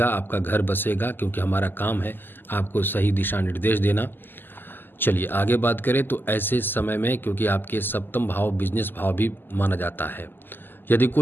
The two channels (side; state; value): right; late; 0.093 ms